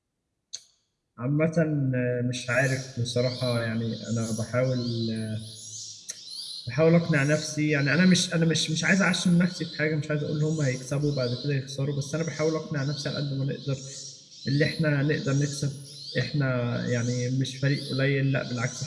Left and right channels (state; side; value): identical; both; correlation 1.00